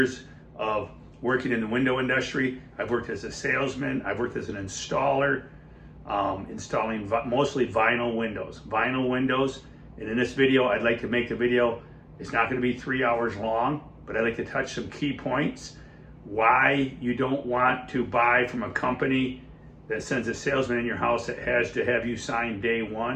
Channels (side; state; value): both; identical; correlation 1.00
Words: of working in the window industry. I've worked as a salesman, I've worked as an installer, installing mostly vinyl windows. And in this video, I'd like to make the video, it's not going to be 3 hours long, but I'd like to touch some key points. Why you don't want to buy from a company that sends a salesman in your house that has to have you sign day